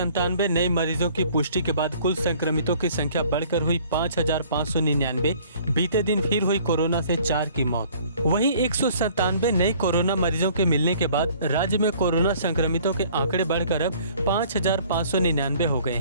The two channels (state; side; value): inverted; both; correlation -0.55